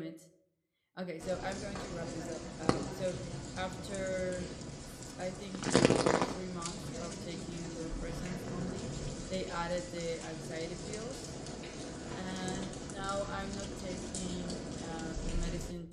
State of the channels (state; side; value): identical; both; correlation 1.00